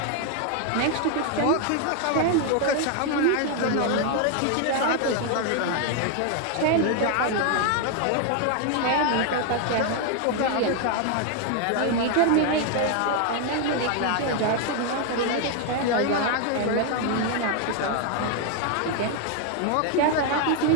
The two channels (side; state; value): both; different; correlation 0.01